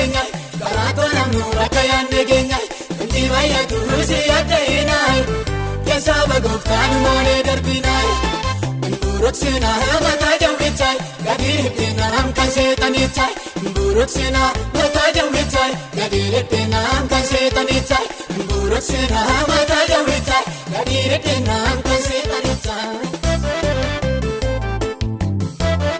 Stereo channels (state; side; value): identical; both; correlation 1.00